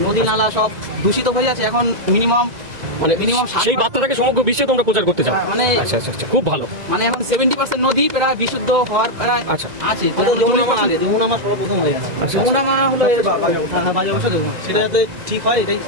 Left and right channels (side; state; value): left; late; 2.0 ms